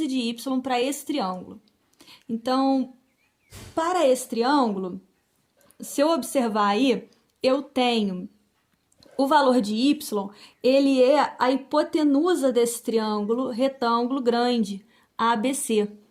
de y para esse triângulo? Então, para esse triângulo, se eu observar aí, eu tenho o valor de y, ele é a hipotenusa desse triângulo retângulo grande, ABC.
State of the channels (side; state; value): both; identical; correlation 1.00